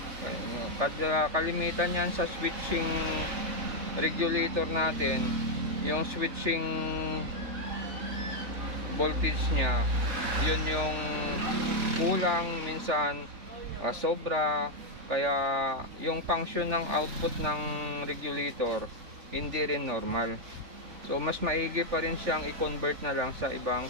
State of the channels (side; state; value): left; late; 3.4 ms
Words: Kalimitan yan sa switching regulator natin, yung switching voltage niya, yun yung kulang minsan, sobra, kaya yung function ng output ng regulator hindi rin normal. So mas maigi pa rin siyang i-convert na lang sa ibang